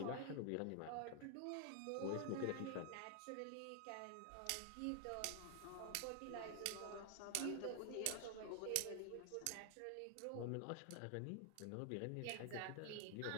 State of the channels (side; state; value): both; different; correlation 0.00